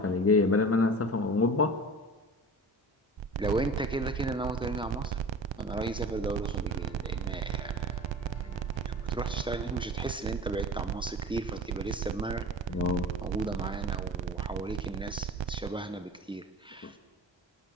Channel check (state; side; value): normal; both; correlation 0.38